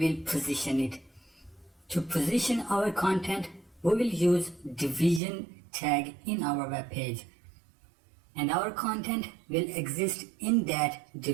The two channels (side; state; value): left; drops out; at 5.2 s